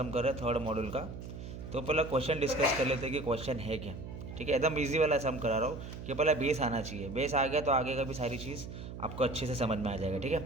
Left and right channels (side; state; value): right; noise; hum, 10 dB below the sound